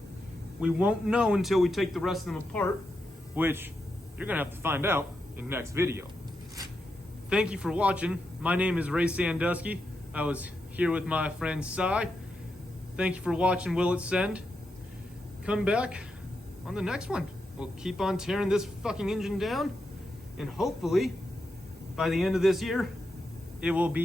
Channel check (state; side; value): normal; both; correlation 0.85